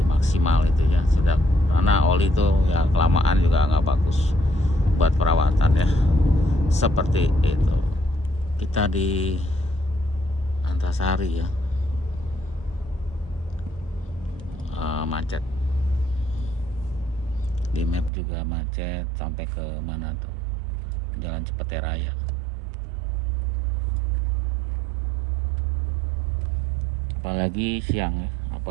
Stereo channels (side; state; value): left; drops out; at 18.1 s